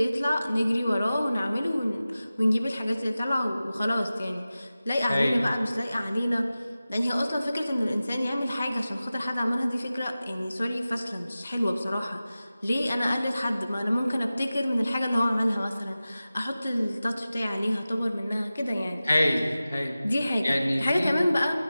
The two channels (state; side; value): inverted; both; correlation -0.96